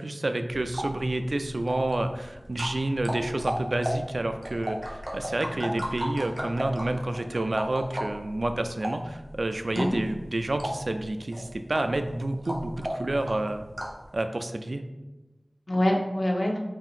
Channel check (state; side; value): normal; both; correlation 0.98